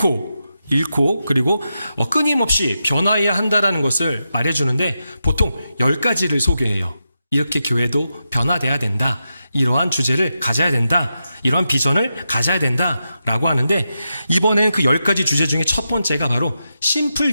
그리고 끊임없이 변화해야 한다는 것을 말해주는데 보통 10가지를 소개해요. 이렇게 교회도 변화돼야 된다. 이러한 주제를 가져야 된다. 이러한 비전을 가져야 된다라고 하는데 이번에는 그 10가지 주제 중에 첫 번째가 바로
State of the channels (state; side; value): inverted; both; correlation -0.88